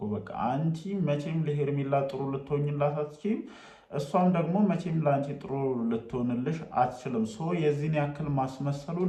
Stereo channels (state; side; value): identical; both; correlation 1.00